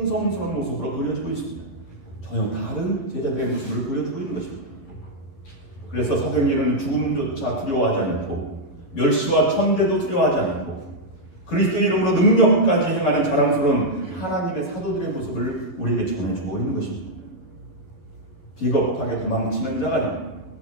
모습으로 그려지고 있습니다. 전혀 다른 제자들의 모습을 그려주고 있는 것입니다. 그래서 사도행전은 죽음조차 두려워하지 않고 멸시와 천대도 두려워하지 않고 그리스도의 이름으로 능력까지 행하는 자랑스러운 하나님의 사도들의 모습을 우리에게 전해주고 있는 것입니다. 비겁하게 도망치는 자가 아니라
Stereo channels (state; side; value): late; right; 11 ms